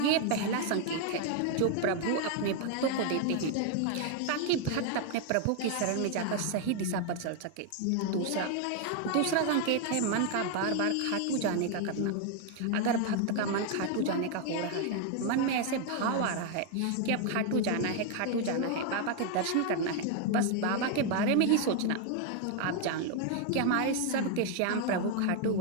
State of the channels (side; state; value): both; different; correlation 0.00